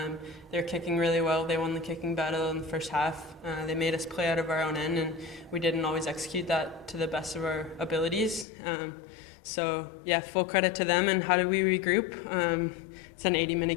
They're kicking really well. They won the kicking battle in the first half. They made us play out of our own end, and we didn't always execute that to the best of our abilities. Full credit to them. And how did we regroup? It's an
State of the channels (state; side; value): drops out; right; at 8.5 s